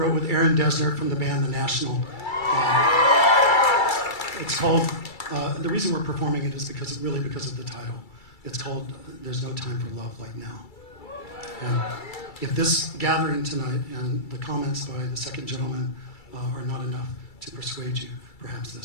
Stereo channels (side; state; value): right; late; 2.3 ms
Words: with Aaron Dessner from the band The National. It's called, the reason we're performing it is because of the title. It's called There's No Time for Love Like Now. And if this gathering tonight and the comments by the second gentleman are not enough to persuade you, perhaps